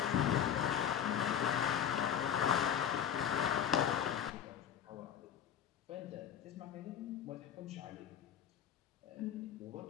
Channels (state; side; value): quieter; right; 9.0 dB